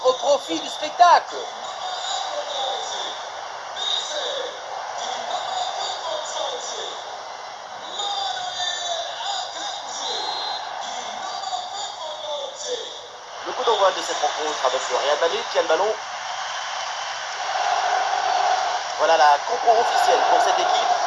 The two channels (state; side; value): identical; both; correlation 1.00